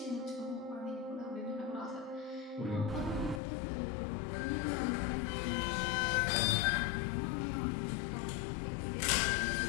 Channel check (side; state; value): right; drops out; at 3.4 s